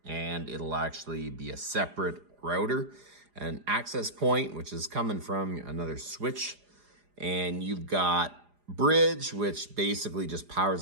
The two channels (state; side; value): late; left; 4.9 ms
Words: and it'll actually be a separate router. An access point, which is coming from another switch. And you've got bridge, which basically just